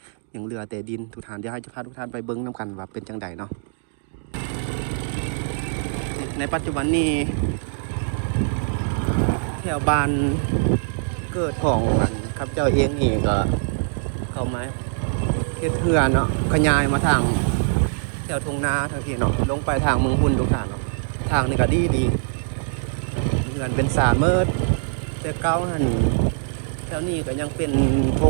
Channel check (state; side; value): silent; left; digital silence